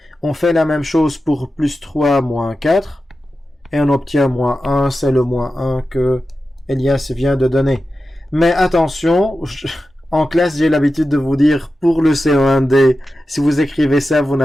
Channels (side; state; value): both; normal; correlation 0.92